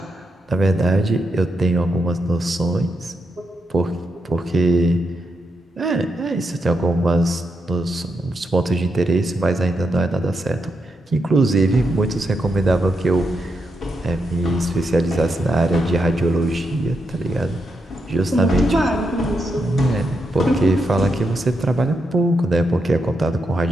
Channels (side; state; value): both; normal; correlation 0.83